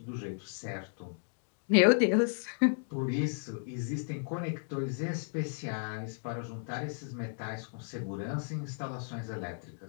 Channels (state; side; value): silent; right; digital silence